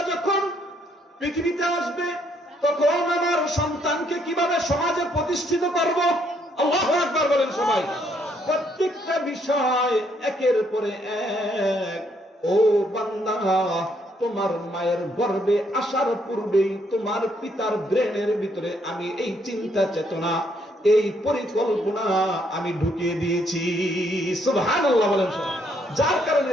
যখন পৃথিবীতে আসবে তখন আমার সন্তানকে কিভাবে সমাজে প্রতিষ্ঠিত করব। আল্লাহু আকবার বলেন সবাই। প্রত্যেকটা বিষয় একের পরে এক। ও বান্দা, তোমার মায়ের গর্ভে আসার পূর্বেই তোমার পিতার ব্রেনের ভিতরে আমি এই চিন্তা চেতনা, এই পরিকল্পনা আমি ঢুকিয়ে দিয়েছি। সুবহানাল্লাহ বলেন। যার কারণে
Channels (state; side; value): normal; both; correlation 0.71